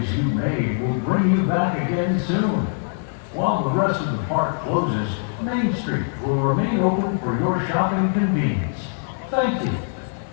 you made will bring you back again soon. While the rest of the park closes, Main Street will remain open for your shopping convenience. Thank you.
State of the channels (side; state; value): right; silent; 64 dB below the other